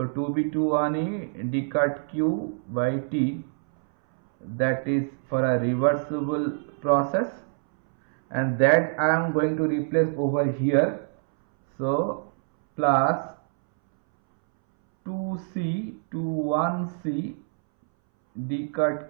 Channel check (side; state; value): left; silent; 61 dB below the other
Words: 2b to 1a d cut q by t, that is for a reversible process, and that I am going to replace over here. So plus 2c to 1c d cut